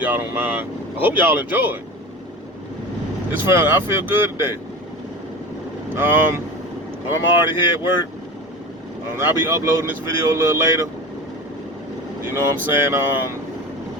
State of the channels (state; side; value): normal; both; correlation 0.31